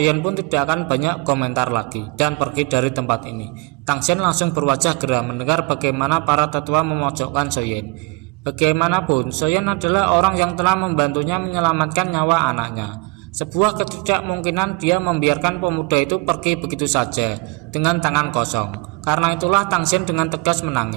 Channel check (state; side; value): quieter; left; 27.9 dB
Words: pun tidak akan banyak komentar lagi dan pergi dari tempat ini. Tangsen langsung berwajah geram mendengar bagaimana para tetua memojokkan Soyen. Bagaimanapun, Soyen adalah orang yang telah membantunya menyelamatkan nyawa anaknya. Sebuah ketidakmungkinan dia membiarkan pemuda itu pergi begitu saja dengan tangan kosong. Karena itulah Tangsen dengan tegas